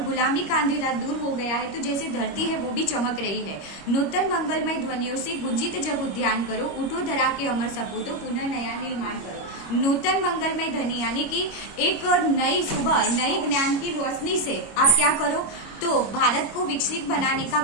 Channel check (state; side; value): late; right; 25 ms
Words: गुलामी का अंधेरा दूर हो गया है, तो जैसे धरती है वो भी चमक रही है। नूतन मंगलमय ध्वनियों से गुंजित जब उद्यान करो, उठो धरा के अमर सपूतो पुनः नया निर्माण करो। नूतन मंगलमय ध्वनि यानी कि एक नई सुबह नई ज्ञान की रोशनी से आप क्या करो, तो भारत को विकसित बनाने का